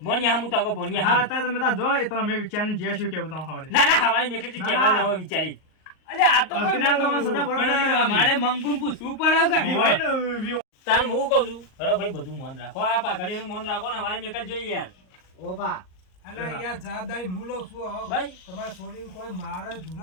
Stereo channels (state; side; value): late; right; 38 ms